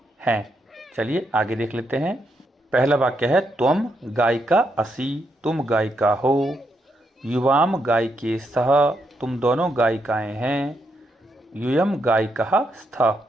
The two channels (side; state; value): both; normal; correlation 0.80